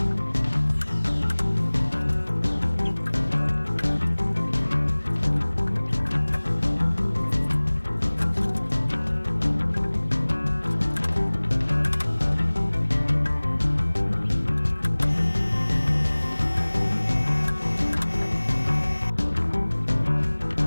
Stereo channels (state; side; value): inverted; both; correlation -1.00